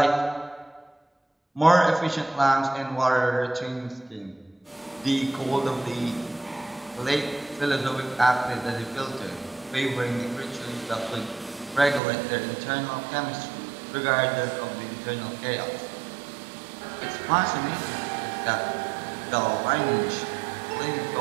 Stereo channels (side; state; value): left; drops out; at 12.0 s